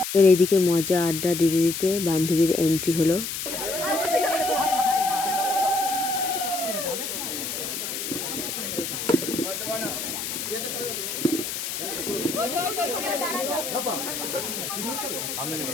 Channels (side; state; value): left; noise; hiss, 4 dB below the sound